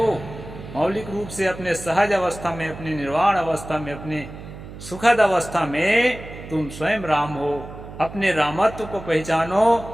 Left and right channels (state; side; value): noise; right; hum, 14 dB below the sound